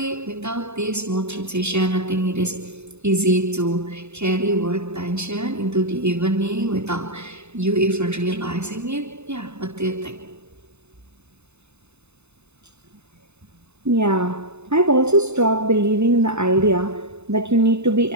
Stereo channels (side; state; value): left; late; 0.81 ms